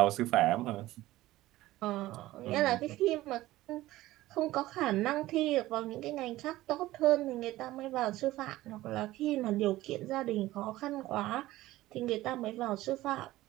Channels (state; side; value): quieter; left; 16.6 dB